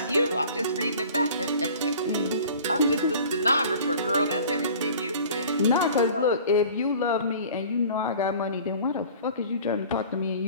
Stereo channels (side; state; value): both; inverted; correlation -0.46